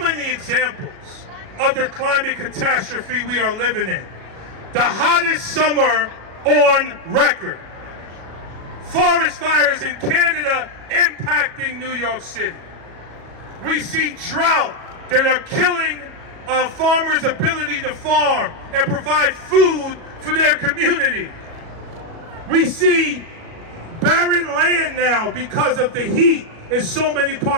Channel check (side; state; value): left; late; 37 ms